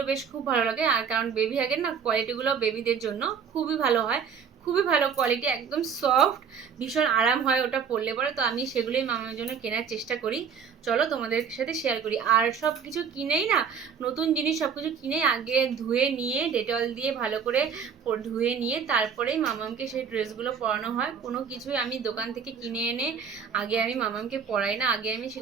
বেশ খুব ভালো লাগে, আর কারণ বেবি হাগের না কোয়ালিটিগুলো বেবিদের জন্য খুবই ভালো হয়, খুবই ভালো কোয়ালিটি, একদম সফট, ভীষণ আরাম হয় ওটা পরলে পরে। তো আমি সেগুলোই মামার জন্য কেনার চেষ্টা করি। চলো তোমাদের সাথে শেয়ার করি। আর সব কিছু কিনেই না, নতুন জিনিস সব কিছু কিনেই আগে ধুয়ে নিয়ে ডেটল দিয়ে ভালো করে ধুয়ে নিয়ে তারপরেই মামামকে সেই ড্রেসগুলো পরানো হয়। কোনো কিছুই আমি দোকান থেকে কিনে এনে আগে আমি মামামকে পরাই না, আগে আমি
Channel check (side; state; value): left; quieter; 6.7 dB